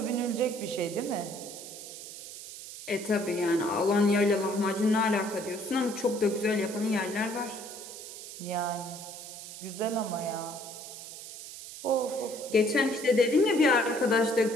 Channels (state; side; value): noise; right; hiss, 12 dB below the sound